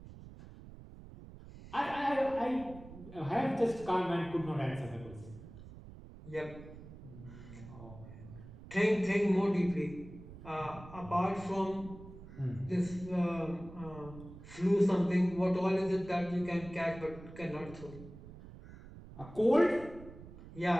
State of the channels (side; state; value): right; noise; rumble, 16 dB below the sound